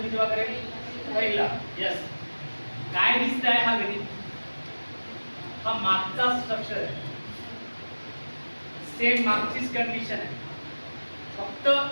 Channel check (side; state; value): both; inverted; correlation -1.00